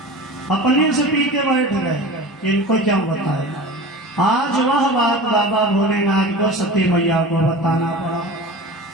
अपने से पी के बैठ गए, इनको क्यों बताए। आज वह बात बाबा भोलेनाथ को सती मैया को बताना पड़ा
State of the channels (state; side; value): normal; both; correlation 0.34